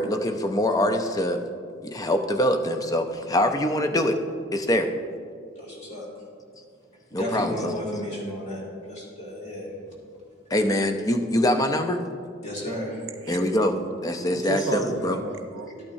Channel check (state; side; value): normal; both; correlation 0.54